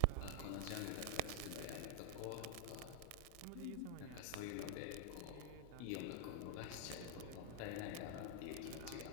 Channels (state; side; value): different; both; correlation 0.00